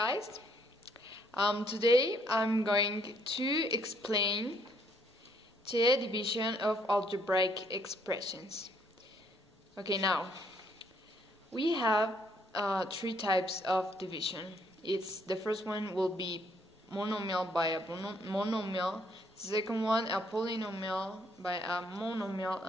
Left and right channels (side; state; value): both; normal; correlation 0.68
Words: Today I'm going to explain the division of algebraic expressions. Okay, now we have three types of division. The first one will be monomial by a monomial, the second one a polynomial by a monomial,